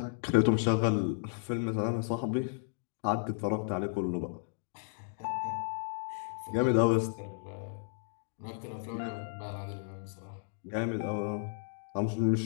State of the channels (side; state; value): right; silent; digital silence